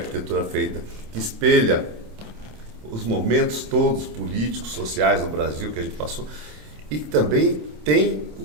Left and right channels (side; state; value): left; late; 27 ms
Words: feita, que espelha os momentos todos políticos, sociais do Brasil que a gente passou, e que também tem